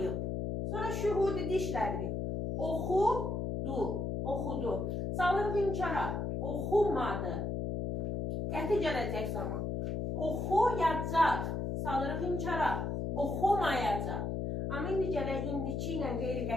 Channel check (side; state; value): left; noise; hum, 2 dB below the sound